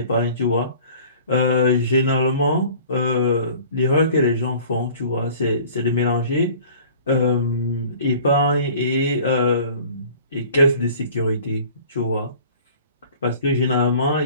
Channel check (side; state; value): both; inverted; correlation -0.48